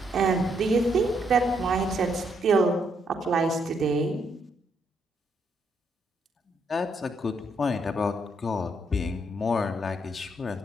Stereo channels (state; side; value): normal; both; correlation 0.74